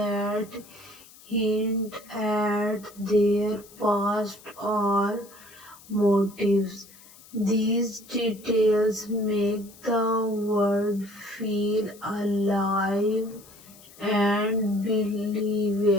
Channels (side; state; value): left; noise; hiss, 22 dB below the sound